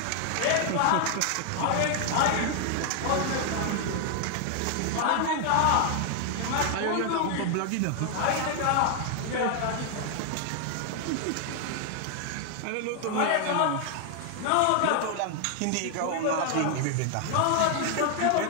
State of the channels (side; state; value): both; different; correlation 0.00